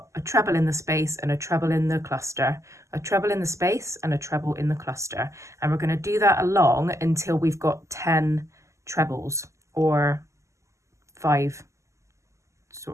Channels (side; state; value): left; late; 0.14 ms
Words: a treble in the space and a treble in the cluster, a treble in the space and a treble in the cluster. And we're going to do that along until we've got 10 trebles, or 5